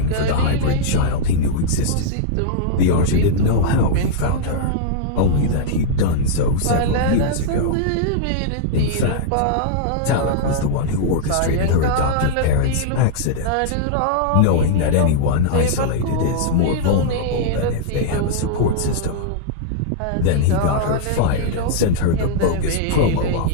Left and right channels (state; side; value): different; both; correlation -0.02